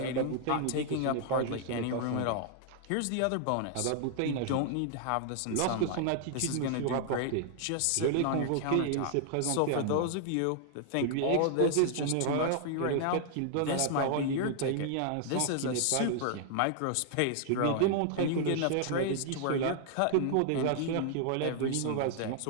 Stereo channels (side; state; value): both; different; correlation 0.00